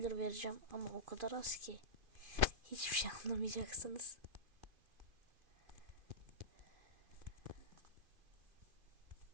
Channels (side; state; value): left; late; 2.5 ms